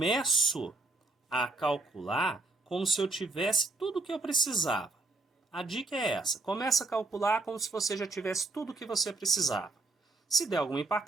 a calcular como se eu tivesse tudo o que eu precisava. A dica é essa. Começa a calcular como se você já tivesse tudo o que você precisava. Se der alguma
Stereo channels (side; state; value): left; quieter; 3.2 dB